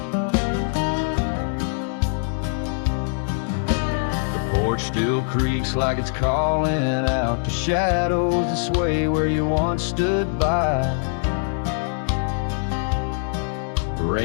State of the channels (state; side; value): silent; right; digital silence